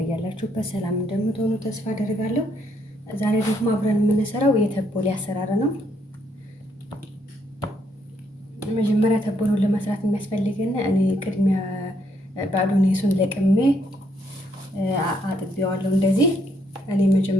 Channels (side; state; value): both; normal; correlation 0.72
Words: ሰላም እንደምትሆኑ ተስፋ አደርጋለሁ። ዛሬ ደግሞ አብረን የምንሰራው የተቦሌ አሰራር ነው። መጀመሪያ ተቦሎን ለመስራት የሚያስፈልገን እኔ ቅድሚያ ባዶኔሱን ለቅሜ አጥቤዋለሁ። እንደዚህ እኔ